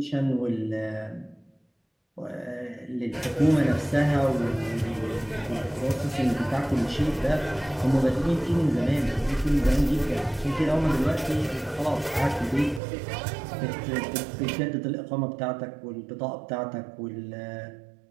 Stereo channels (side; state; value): left; drops out; at 12.8 s